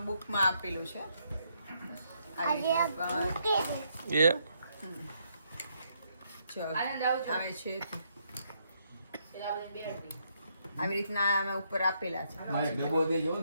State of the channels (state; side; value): inverted; both; correlation -0.75